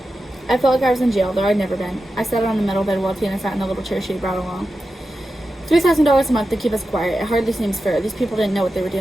I felt like I was in jail, though I'd never been. I sat on the metal bed while Tina sat in the little chair she had brought along. $3,000 a month to keep us quiet. It hardly seems fair. These people didn't know what they were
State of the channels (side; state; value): both; normal; correlation 0.91